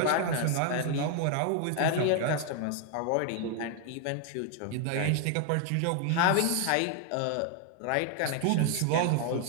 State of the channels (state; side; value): different; both; correlation 0.00